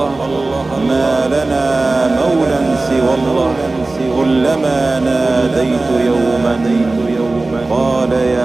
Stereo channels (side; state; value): left; quieter; 3.2 dB